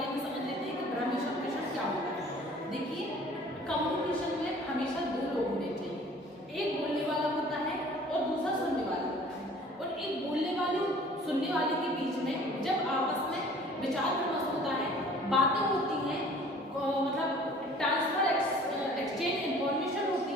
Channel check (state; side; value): normal; both; correlation 0.50